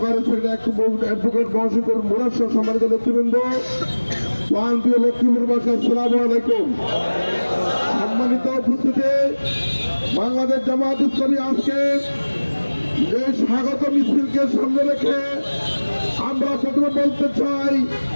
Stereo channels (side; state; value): both; inverted; correlation -1.00